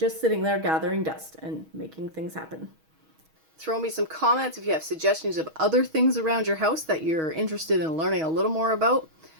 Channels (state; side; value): late; left; 6.3 ms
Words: sitting there gathering dust and making things happen. Throw me some comments if you have suggestions of other things around your house that you're interested in learning a little more about.